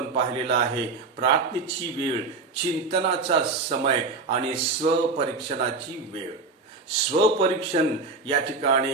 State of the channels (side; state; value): left; quieter; 4.1 dB